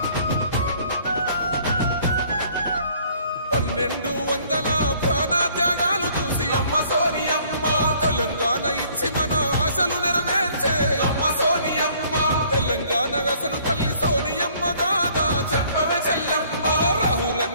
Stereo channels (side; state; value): both; inverted; correlation -0.59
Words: 1200 ప్రాణత్యాగాలు చూసి అమ్మ సోనియమ్మ తెలంగాణ ఇచ్చి మన ఆశలు నెరవేర్చే అమ్మ సోనియమ్మ తెలంగాణ అసలు తల్లి సోనియమ్మ గాదా చెప్పవే చెల్లెమ్మ